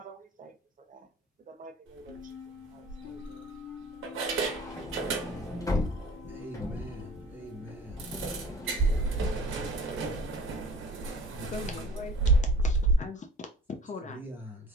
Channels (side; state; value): both; normal; correlation 0.45